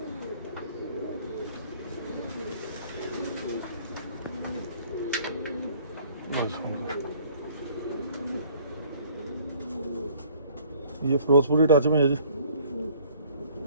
ये फिरोजपुरी टच में है जी।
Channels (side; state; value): both; inverted; correlation -0.56